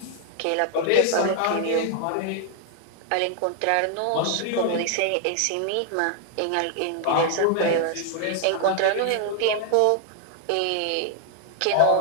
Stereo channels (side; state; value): both; different; correlation 0.00